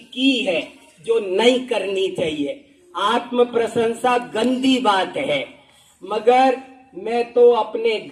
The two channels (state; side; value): identical; both; correlation 1.00